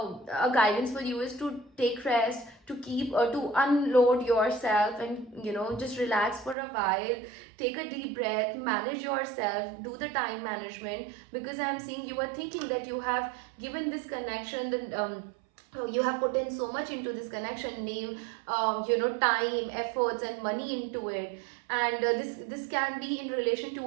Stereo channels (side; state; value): left; drops out; at 6.6 s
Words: guidance for you is to take rest, to keep to unload yourself, and just relax for a while. Take a deep breath, manage yourself, do the time management, because I'm seeing you are thinking that you have given this connection, you have put in so much into this connection, name, time, efforts and money into it. And this can be in relation